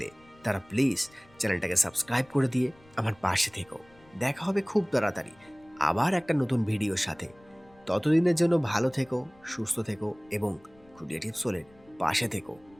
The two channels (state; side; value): noise; left; rumble, 28 dB below the sound